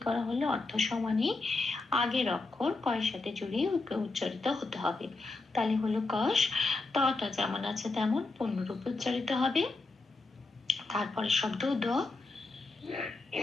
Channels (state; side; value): quieter; right; 3.5 dB